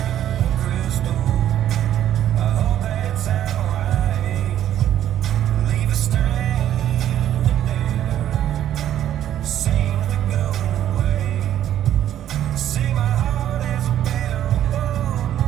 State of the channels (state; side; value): quieter; left; 11.3 dB